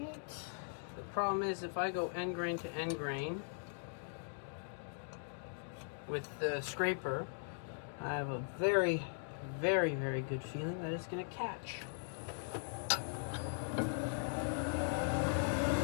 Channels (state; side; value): silent; right; digital silence